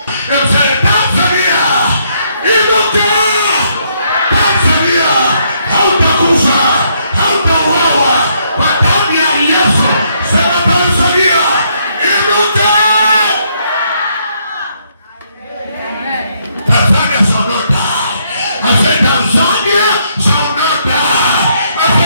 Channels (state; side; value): inverted; both; correlation -0.72